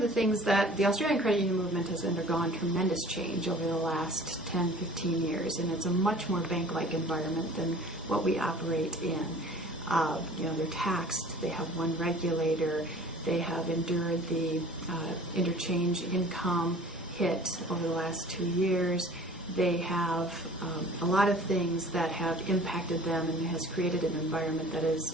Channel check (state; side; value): normal; both; correlation 0.47